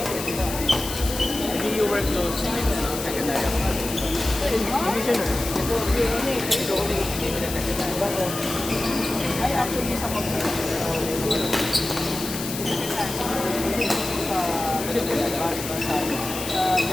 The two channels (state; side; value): noise; left; hiss, 7 dB below the sound